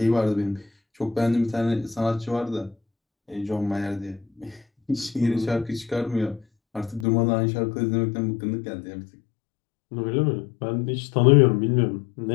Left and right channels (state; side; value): drops out; right; at 7.1 s